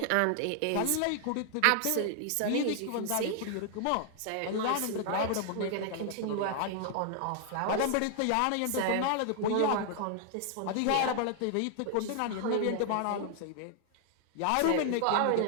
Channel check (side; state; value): both; different; correlation 0.00